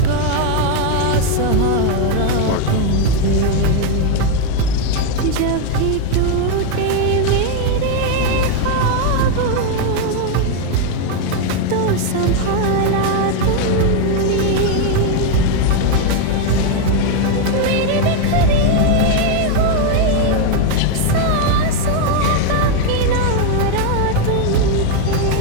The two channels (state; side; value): different; both; correlation 0.01